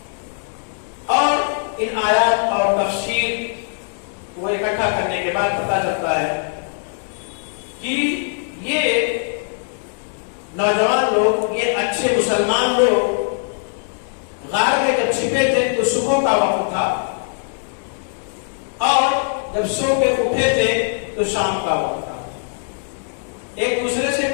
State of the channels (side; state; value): right; silent; digital silence